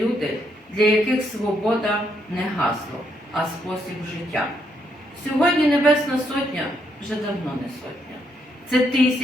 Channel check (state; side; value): normal; both; correlation 0.75